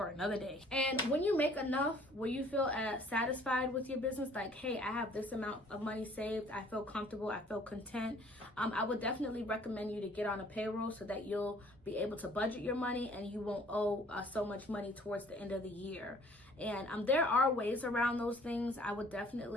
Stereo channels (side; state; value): both; normal; correlation 0.56